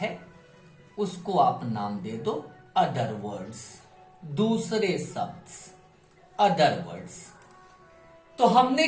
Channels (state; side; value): identical; both; correlation 1.00